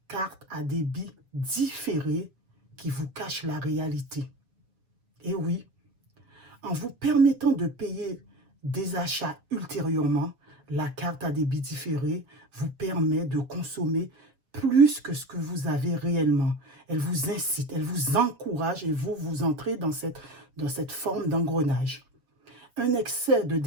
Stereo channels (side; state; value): left; late; 7.3 ms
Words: carte à débit différé qui vous cache la réalité. Et oui, en vous permettant de payer des achats ultérieurement, la carte à débit différé vous permet de consommer plus que ce que vous avez réellement. Elle vous incite, elle vous encourage et vous entrez dans cette forme d'engrenage. Un excès de